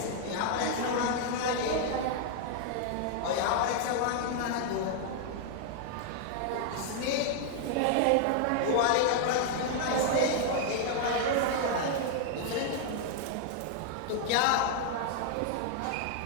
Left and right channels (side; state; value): both; different; correlation 0.00